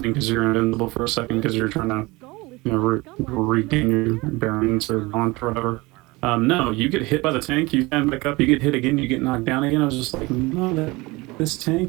because you're invincible for a second because you're trying to, you know, regain your bearings or launch or whatever. No, you get hit by the tank, you stand back up, you get hit again, you get knocked down again. I was just like, no, this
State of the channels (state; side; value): quieter; left; 23.0 dB